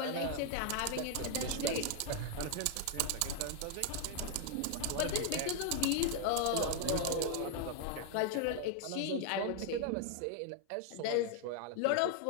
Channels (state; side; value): different; both; correlation 0.00